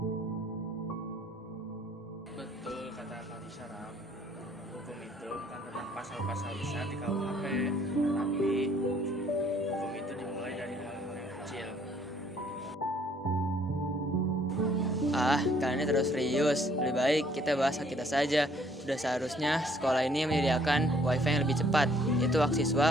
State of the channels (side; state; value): both; normal; correlation 0.63